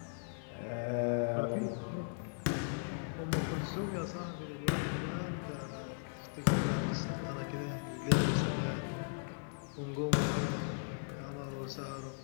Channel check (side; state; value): right; silent; digital silence